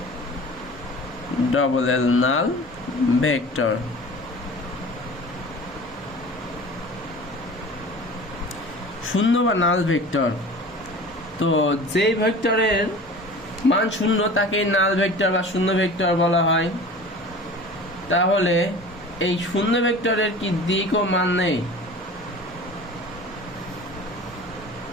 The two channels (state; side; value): normal; both; correlation 0.40